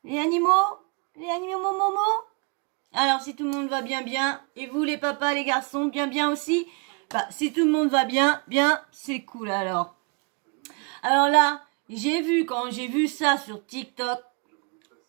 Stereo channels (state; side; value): quieter; left; 34.5 dB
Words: Les animaux? Les animaux momo? Alors si tout le monde va bien bien, et vous les papas, les garçons, bien bien aussi? Bah si tout le monde va bien, bien, c'est cool alors. Alors là, quand j'ai vu ça sur TikTok,